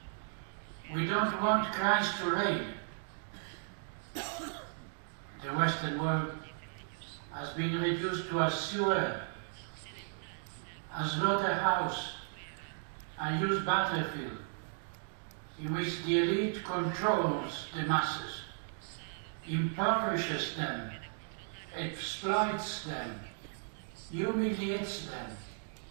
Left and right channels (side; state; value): left; silent; digital silence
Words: We don't want Christ to reign. The Western world has been reduced to a sewer, a slaughterhouse, a used battlefield, in which the elite controls the masses, impoverishes them, exploits them, humiliates them,